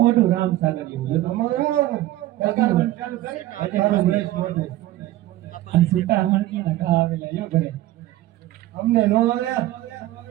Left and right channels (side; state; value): left; quieter; 15.3 dB